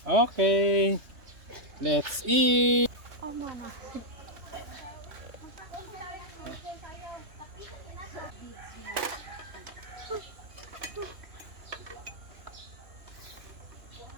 Okay. Let's eat.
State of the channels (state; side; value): late; left; 3.3 ms